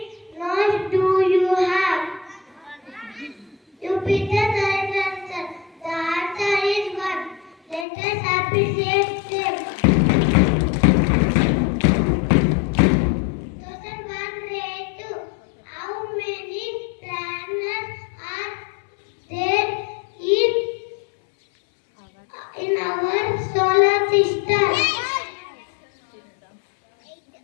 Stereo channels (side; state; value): right; drops out; at 7.9 s